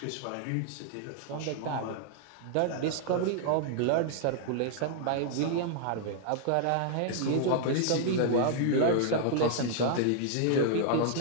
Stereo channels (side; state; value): both; different; correlation -0.01